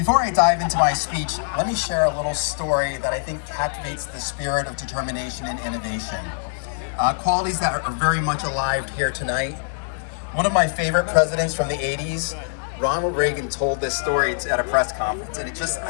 I dive into my speech, let me share a little story that I think captivates the spirit of determination and innovation. Qualities that are very much alive here tonight. One of my favorite presidents from the 80s, Ronald Reagan, told this story at a press conference, and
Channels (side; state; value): right; silent; digital silence